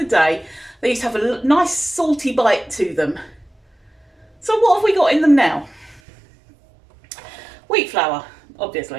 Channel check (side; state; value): left; drops out; at 6.0 s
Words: day, they used to have a nice salty bite to them. So what have we got in them now? Wheat flour,